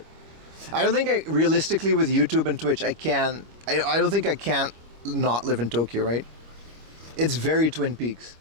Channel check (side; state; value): left; late; 25 ms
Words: I don't think realistically with YouTube and Twitch, I don't think I can't not live in Tokyo, right? It's very Twin Peaks.